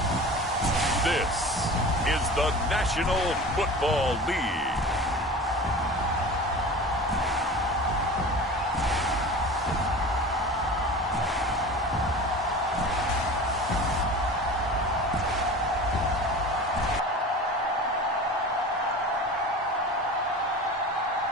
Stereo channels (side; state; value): both; normal; correlation 0.35